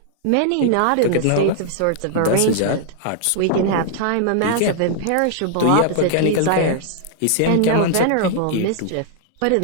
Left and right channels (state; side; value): different; both; correlation -0.01